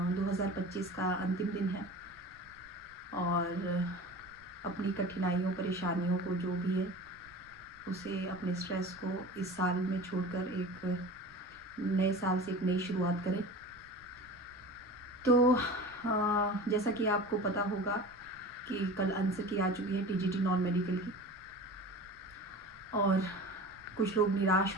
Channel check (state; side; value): noise; right; rumble, 28 dB below the sound